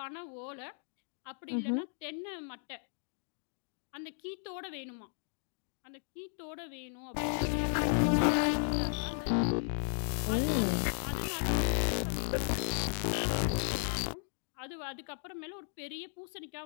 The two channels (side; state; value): right; silent; 54 dB below the other